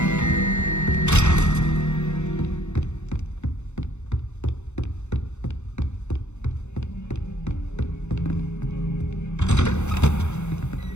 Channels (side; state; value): right; late; 0.82 ms